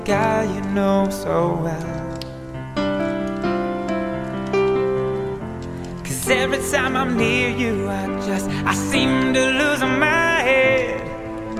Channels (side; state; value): both; identical; correlation 1.00